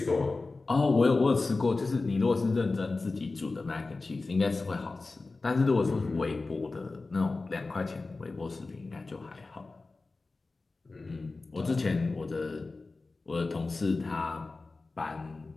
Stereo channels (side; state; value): right; quieter; 3.6 dB